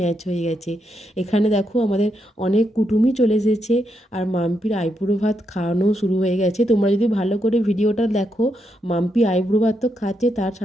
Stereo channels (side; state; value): both; normal; correlation 0.81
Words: হয়ে গেছে। এখানে দেখো আমাদের অনেক কুটুমই চলে এসেছে, আর মাম্পির আইবুড়ো ভাত খাওয়ানো শুরু হয়ে গেছে। তোমরা যদি ভালো করে ভিডিওটা দেখো, মাম্পি আইবুড়ো ভাত তো খাচ্ছে, তার